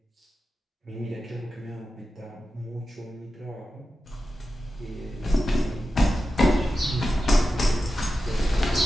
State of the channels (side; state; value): both; normal; correlation 0.91